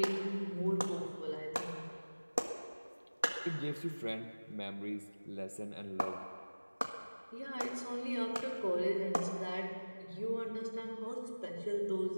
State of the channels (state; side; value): inverted; both; correlation -1.00